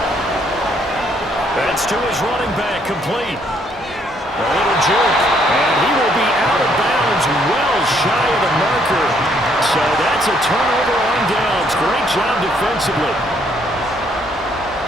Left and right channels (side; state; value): both; normal; correlation 0.68